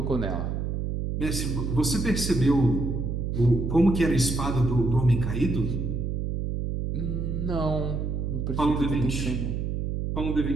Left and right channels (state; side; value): noise; right; hum, 2 dB below the sound